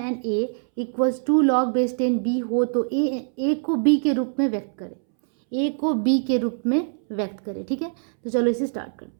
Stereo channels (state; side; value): silent; left; 63 dB below the other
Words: and a equals to log base 10 b हो तो a को b के रूप में व्यक्त करें. a को b के रूप में व्यक्त करें. ठीक है, तो चलो इसे स्टार्ट